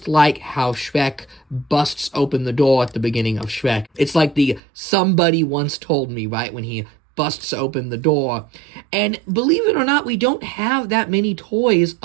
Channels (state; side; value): drops out; left; at 4.6 s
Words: like how Shrek busts open the door at the beginning of Shrek. It's like the somebody once told me, right, when he busts open the door. And believe it or not, we don't have that many toys